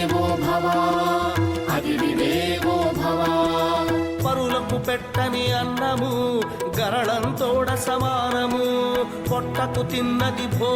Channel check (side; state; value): both; identical; correlation 1.00